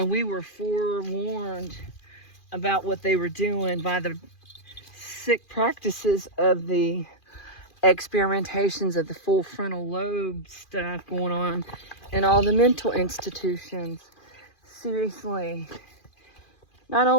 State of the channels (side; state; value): right; late; 2.4 ms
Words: we were forewarned about what they were doing by the sick practices of the experimentations of the full frontal lobe stuff going on in all the mental institutions. Seriously. Not